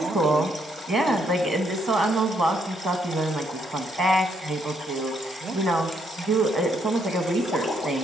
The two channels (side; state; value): both; normal; correlation 0.73